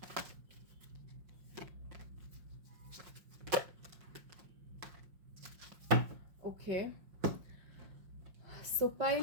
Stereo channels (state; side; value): late; left; 5.6 ms